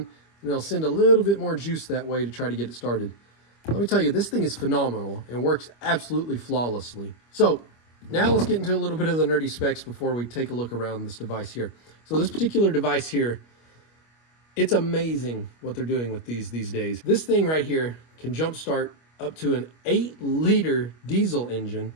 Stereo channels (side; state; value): right; late; 25 ms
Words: it'll send a little bit more juice that way to try to get it started. Let me tell you, this thing is phenomenal and works absolutely flawlessly. So now let's get into a little bit of the nerdy specs before we take a look around this device here. So this particular device here, it's amazing what they're doing with these days. This thing right here can jumpstart up to an 8-liter diesel engine.